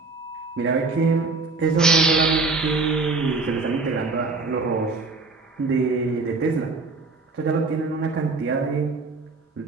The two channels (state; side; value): quieter; left; 3.9 dB